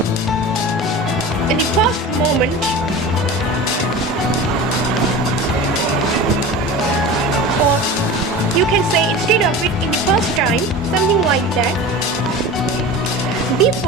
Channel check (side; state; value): both; normal; correlation 0.33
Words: in the past moment or you can say instead of it in the past time, something like that,